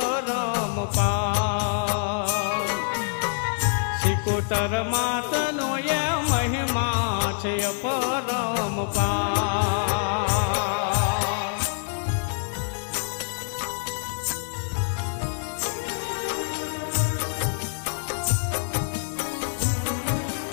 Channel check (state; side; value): silent; right; digital silence